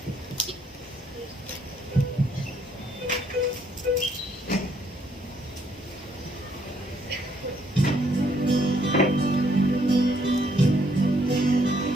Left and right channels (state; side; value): normal; both; correlation 0.69